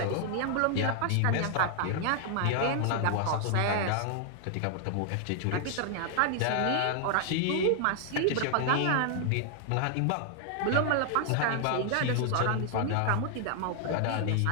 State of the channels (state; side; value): different; both; correlation 0.00